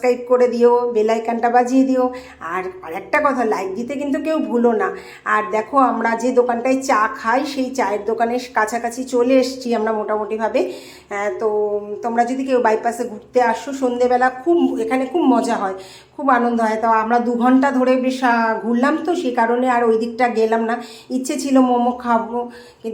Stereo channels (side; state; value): both; identical; correlation 1.00